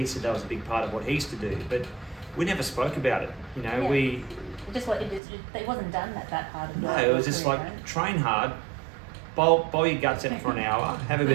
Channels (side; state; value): left; drops out; at 5.2 s